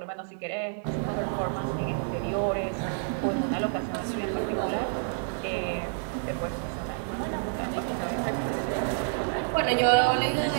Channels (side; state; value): left; silent; 59 dB below the other